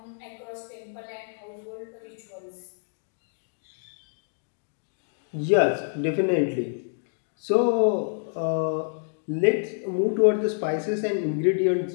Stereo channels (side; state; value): right; silent; digital silence